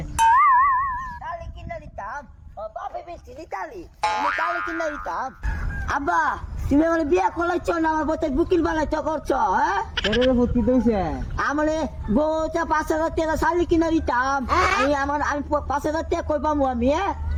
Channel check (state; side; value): identical; both; correlation 1.00